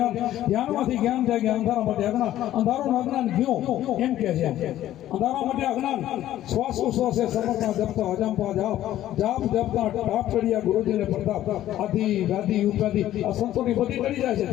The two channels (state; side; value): quieter; right; 13.2 dB